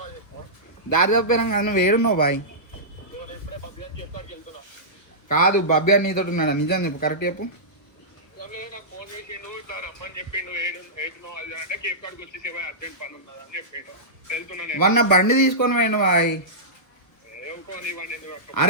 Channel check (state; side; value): late; right; 1.5 ms